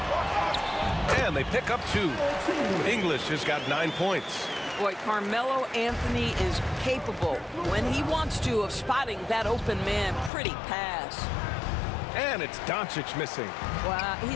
And they pick up 2. English has got 9 points. Boy, Carmelo Anthony is capable, when he wants to, of spotting that open man. Pretty pass. And it's Doncic missing. Well,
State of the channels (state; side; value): drops out; right; at 10.3 s